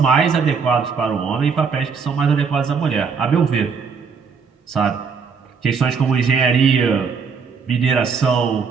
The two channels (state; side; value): quieter; left; 5.7 dB